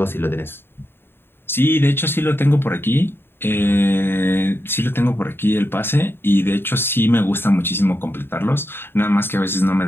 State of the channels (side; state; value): right; late; 0.11 ms